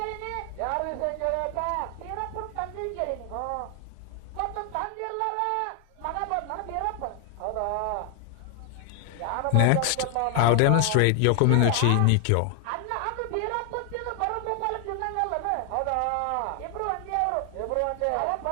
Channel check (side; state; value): both; different; correlation 0.00